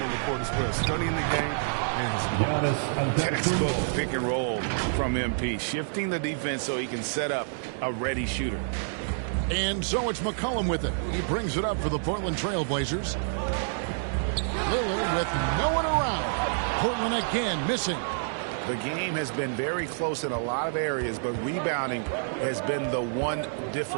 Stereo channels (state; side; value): silent; left; digital silence